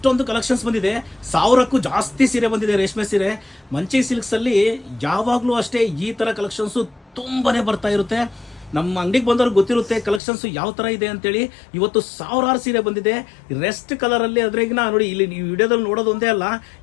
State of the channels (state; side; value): drops out; right; at 10.2 s